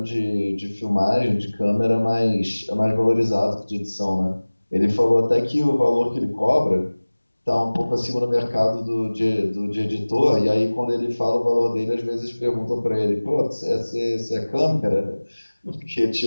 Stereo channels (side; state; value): both; inverted; correlation -1.00